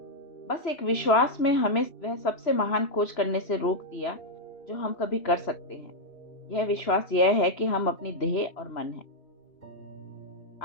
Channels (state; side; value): late; right; 3.0 ms